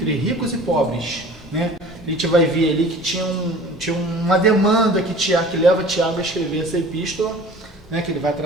ricos e pobres, né? A gente vai ver ali que tinha uma demanda que leva Tiago a escrever essa epístola, né? Que ele vai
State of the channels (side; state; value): both; normal; correlation 0.44